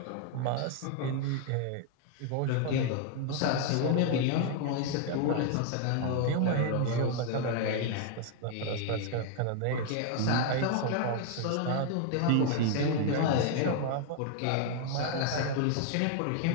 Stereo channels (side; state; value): both; different; correlation 0.00